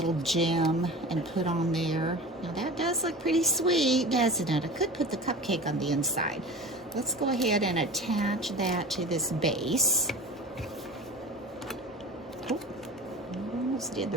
gem and put on there. Now that does look pretty sweet, doesn't it? I could put the cupcake on the inside. Let's go ahead and attach that to this base. Oh, I almost did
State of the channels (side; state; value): both; normal; correlation 0.34